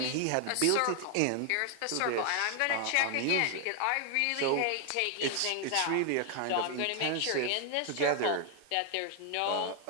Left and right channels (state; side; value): different; both; correlation 0.00